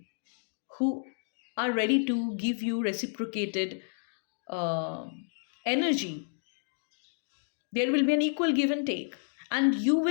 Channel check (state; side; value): silent; right; digital silence